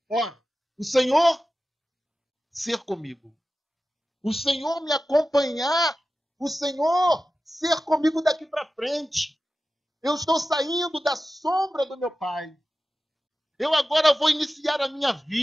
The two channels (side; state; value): both; normal; correlation 0.94